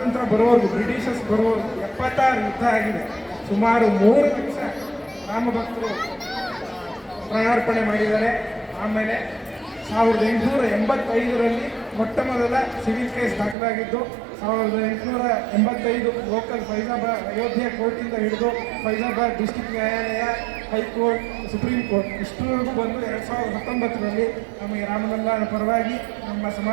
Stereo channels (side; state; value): left; drops out; at 13.6 s